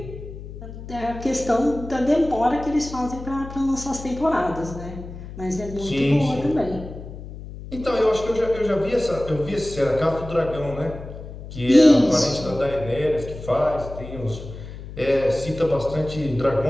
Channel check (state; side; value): noise; left; hum, 12 dB below the sound